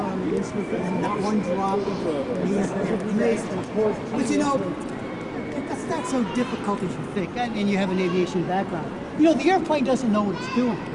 the instrument and not one drop. He's amazing. But you know, that's not so difficult as you think. And you have an aviation background. You know, the airplane doesn't know what it's doing.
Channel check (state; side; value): identical; both; correlation 1.00